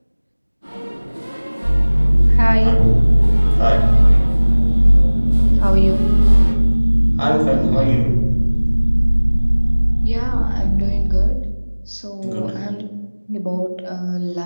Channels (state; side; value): inverted; both; correlation -1.00